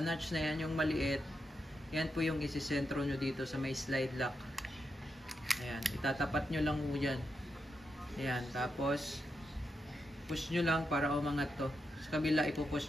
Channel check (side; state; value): both; normal; correlation 0.85